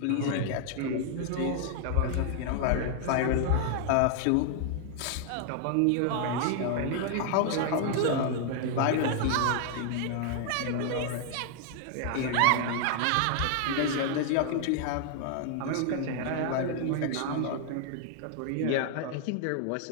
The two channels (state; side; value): different; both; correlation 0.00